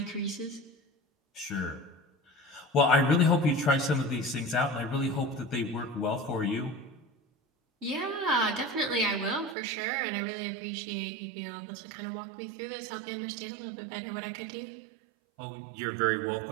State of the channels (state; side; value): drops out; left; at 9.6 s